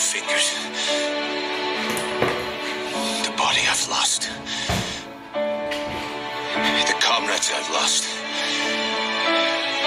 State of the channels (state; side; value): identical; both; correlation 1.00